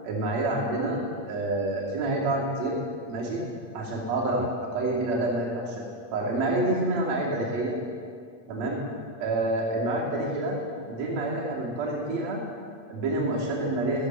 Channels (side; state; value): left; late; 8.6 ms